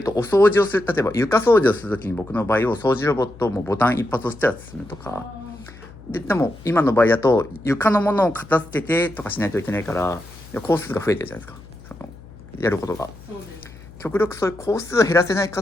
とお掃除をする、例えば床掃除をするときに僕の場合を掃除ロボットもボタン一発押したら進むとかでも今の場合だと床のものを片付けてとかしないといけないから工数が増えてるじゃないですか、そのやることが。極力そういう工数を減らせないか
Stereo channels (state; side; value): noise; left; hum, 19 dB below the sound